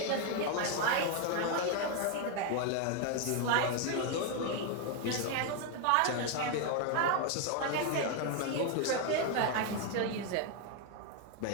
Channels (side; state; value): both; different; correlation 0.01